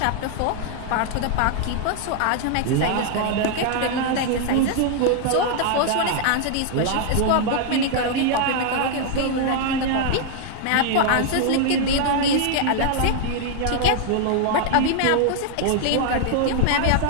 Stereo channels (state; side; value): different; both; correlation 0.00